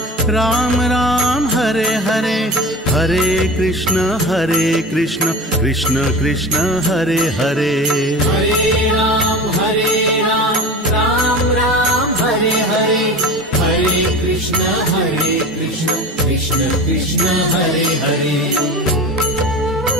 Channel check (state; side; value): normal; both; correlation 0.32